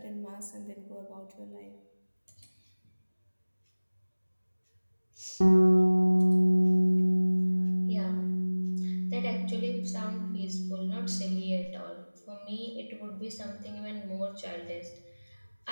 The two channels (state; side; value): inverted; both; correlation -1.00